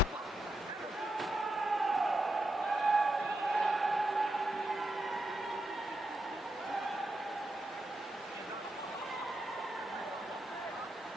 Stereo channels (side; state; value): both; normal; correlation 0.84